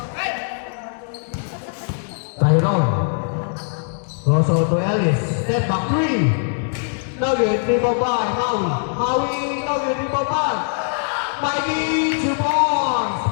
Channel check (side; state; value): right; silent; digital silence